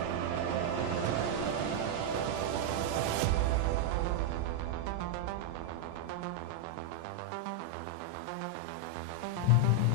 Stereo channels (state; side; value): different; both; correlation 0.00